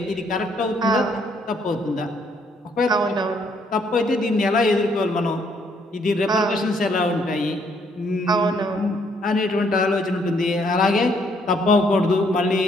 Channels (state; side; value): normal; both; correlation 0.68